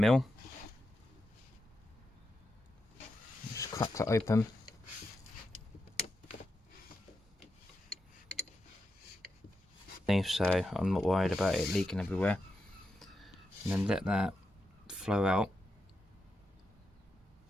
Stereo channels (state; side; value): normal; both; correlation 0.86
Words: Just crack that open. So I'm not worried about it leaking everywhere. And then let that flow out.